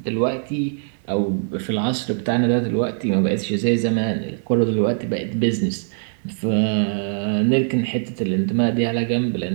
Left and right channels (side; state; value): left; silent; digital silence